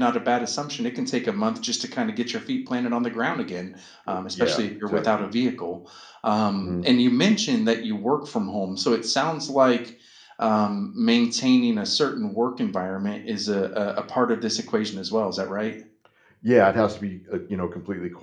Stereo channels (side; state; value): both; identical; correlation 1.00